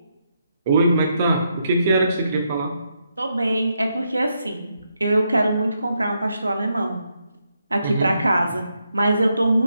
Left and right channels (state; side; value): inverted; both; correlation -0.80